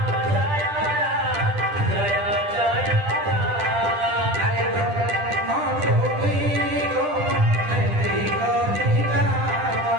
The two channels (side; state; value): left; late; 10 ms